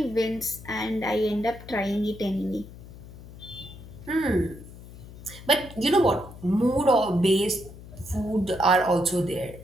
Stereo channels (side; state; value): left; noise; hum, 16 dB below the sound